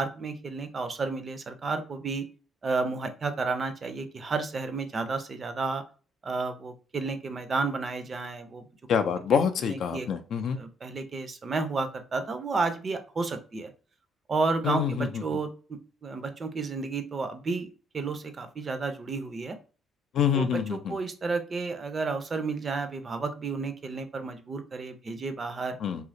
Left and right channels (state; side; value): normal; both; correlation 0.68